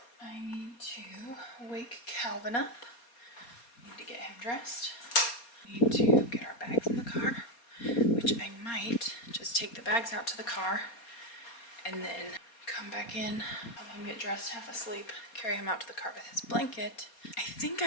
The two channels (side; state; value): right; late; 4.3 ms